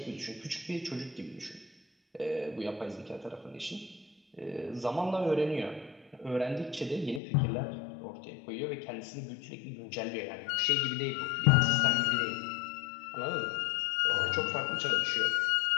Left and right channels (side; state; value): right; drops out; at 7.2 s